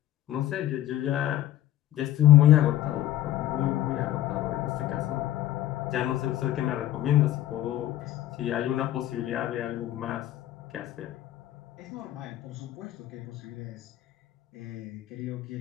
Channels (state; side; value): quieter; right; 13.4 dB